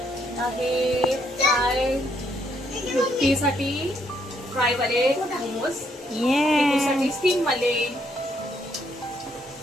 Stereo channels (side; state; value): both; normal; correlation 0.72